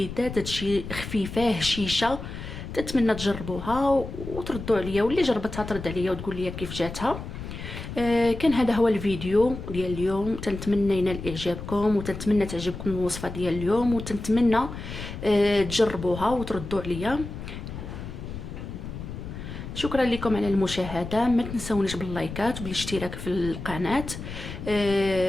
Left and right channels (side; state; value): left; noise; rumble, 9 dB below the sound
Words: تجي خفيفه هشيشه. تتمنى تجربوها وتردوا عليا، واللي جربتها ترد عليا وتقول لي كيف جاتها. كان هذا هو الفيديو ديال اليوم، تنتمنى ينال اعجابكم وتنتمنى تعجبكم الوصفه ديال اليوم، وتنتمنى تجربوها وتردوا عليا. شكرا لكم على المشاهده، ما تنسونيش باللايكات وبالاشتراك في القناه.